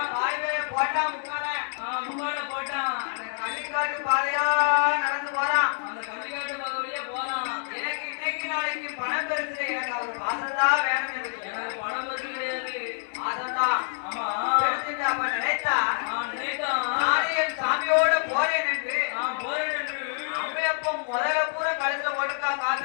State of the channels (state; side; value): silent; right; digital silence